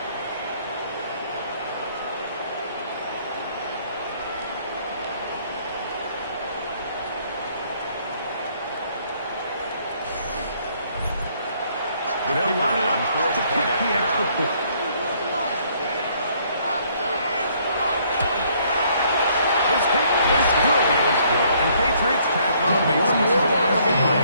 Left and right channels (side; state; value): both; inverted; correlation -0.65